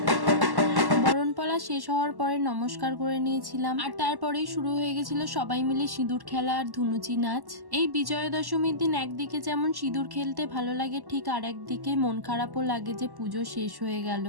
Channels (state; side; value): late; left; 1.1 ms